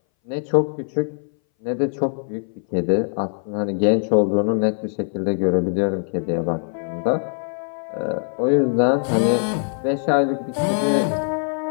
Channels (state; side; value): silent; right; 60 dB below the other